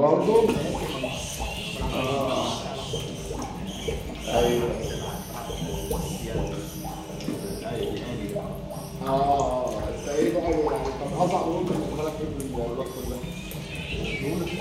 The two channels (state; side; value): identical; both; correlation 1.00